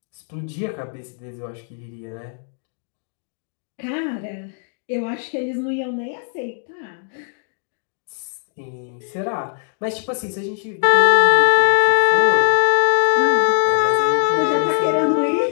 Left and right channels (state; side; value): silent; right; 65 dB below the other